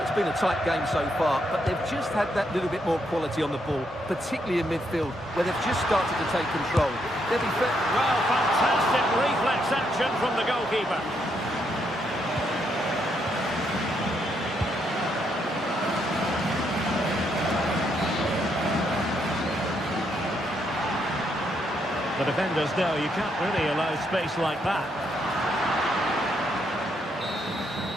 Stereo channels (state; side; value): normal; both; correlation 0.76